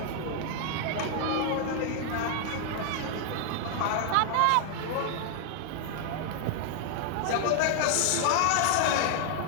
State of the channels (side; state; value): both; different; correlation 0.00